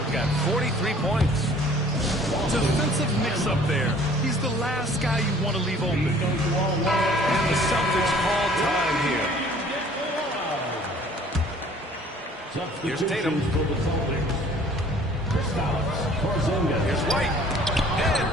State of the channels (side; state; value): both; normal; correlation 0.53